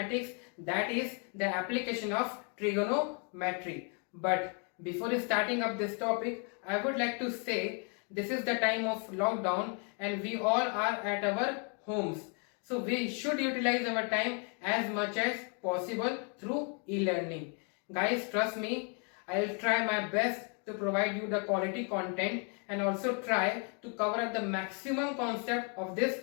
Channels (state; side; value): quieter; right; 38.7 dB